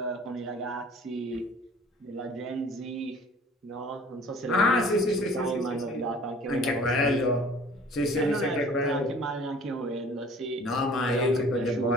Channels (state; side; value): normal; both; correlation 0.49